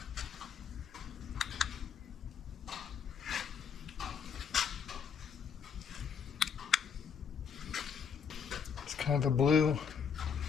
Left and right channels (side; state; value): right; quieter; 6.9 dB